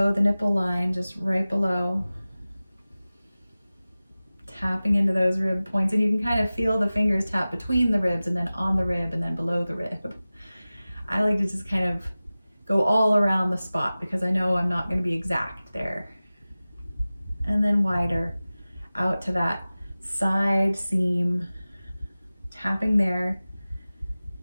the nipple line, just right below. Tapping into those rib points, and you can kind of feel the fingers tap between the ribs and then on the rib and then below the rib. I like to just kind of go all around the spot because I know I'm not going to be exact there. And then wider out to that side seam, tapping there.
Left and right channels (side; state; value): both; inverted; correlation -0.97